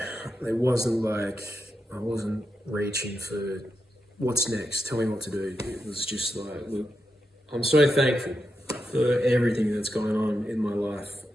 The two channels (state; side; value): normal; both; correlation 0.86